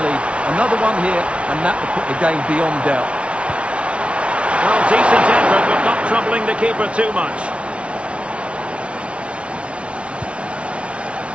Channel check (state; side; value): late; left; 0.060 ms